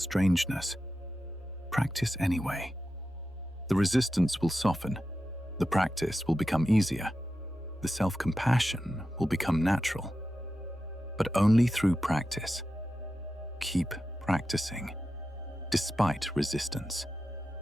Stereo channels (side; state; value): both; normal; correlation 0.91